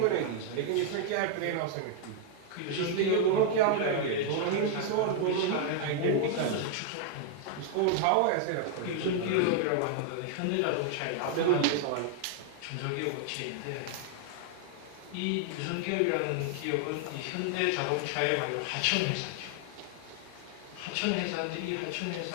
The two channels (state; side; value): different; both; correlation 0.00